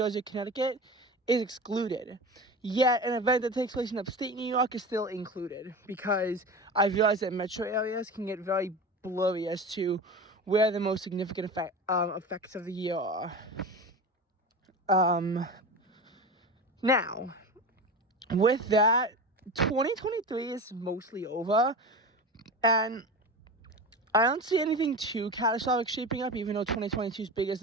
Connecticut, is excluded. Yet an event that takes place in upstate New York is still included, because I realize that metro areas can get very blurry as to where the most significant effects of the year are. Now, with that, 2023 is mostly over, and I don't see anything too catastrophic shaping up, even though 2022's biggest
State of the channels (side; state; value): both; normal; correlation 0.28